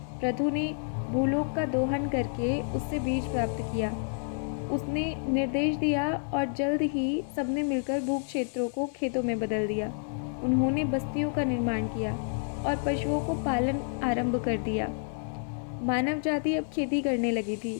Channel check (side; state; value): right; silent; digital silence